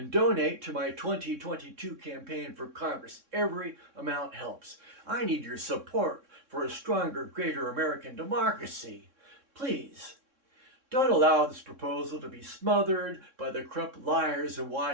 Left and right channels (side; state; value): left; late; 3.6 ms